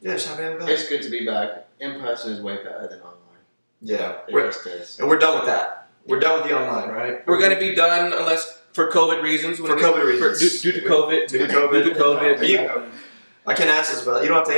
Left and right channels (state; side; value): inverted; both; correlation -1.00